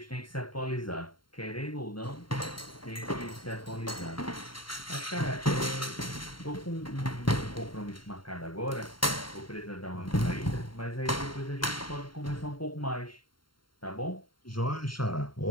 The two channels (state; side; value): late; right; 0.73 ms